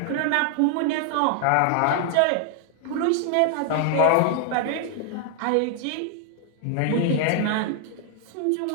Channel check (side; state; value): both; different; correlation 0.00